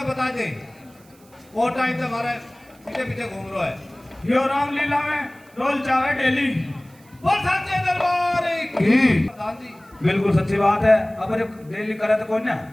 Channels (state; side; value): noise; right; hiss, 29 dB below the sound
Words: बता दे। वो टाइम से हमारे पीछे पीछे घूम रहा है। यो रामलीला में रोल चावे डेली। बोल सच्चे दरबार की। प्रधान जी बिल्कुल सच्ची बात है। अब जब डेली करे तो कौन ना।